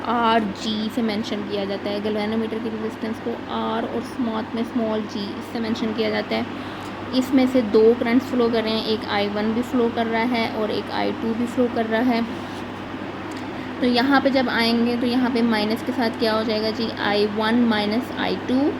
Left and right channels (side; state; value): both; identical; correlation 1.00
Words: RG से मेंशन किया जाता है। गैल्वेनोमीटर की रेजिस्टेंस को R और स्मॉल g इससे मेंशन किया जाता है। इसमें से 2 करंट्स फ्लो कर रहे हैं, एक I1 भी फ्लो कर रहा है और एक I2 भी फ्लो कर रहा है। तो यहाँ पे जब आएंगे तो यहाँ पे माइनस के साथ क्या हो जाएगा जी, I1 माइनस I2